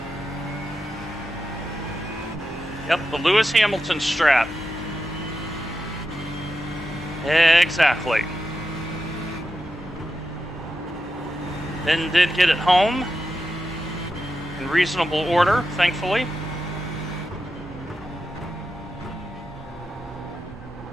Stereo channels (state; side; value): normal; both; correlation 0.89